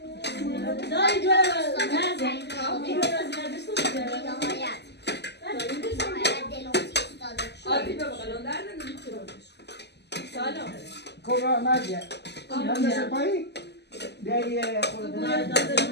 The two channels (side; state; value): right; late; 0.50 ms